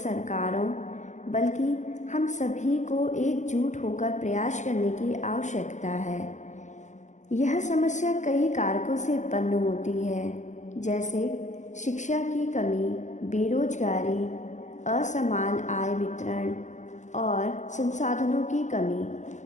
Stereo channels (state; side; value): late; right; 0.35 ms